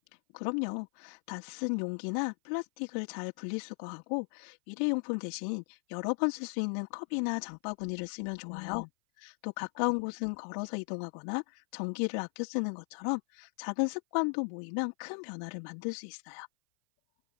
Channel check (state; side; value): silent; right; 53 dB below the other